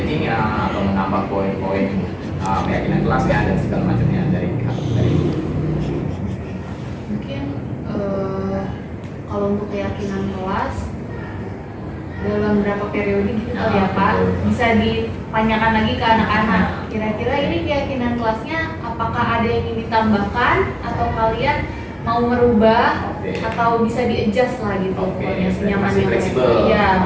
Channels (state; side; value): identical; both; correlation 1.00